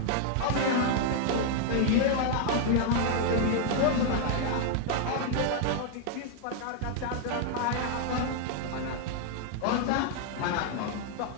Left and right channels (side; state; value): both; different; correlation 0.00